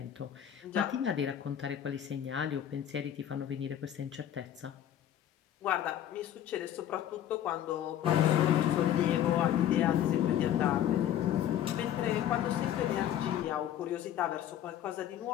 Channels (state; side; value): quieter; right; 11.0 dB